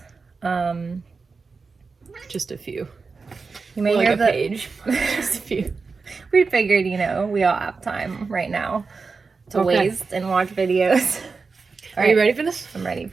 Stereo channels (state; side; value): quieter; left; 4.6 dB